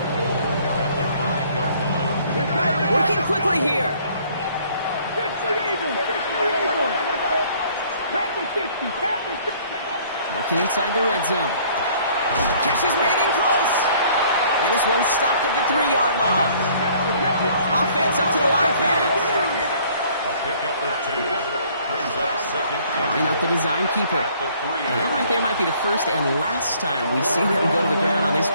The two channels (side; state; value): both; inverted; correlation -0.58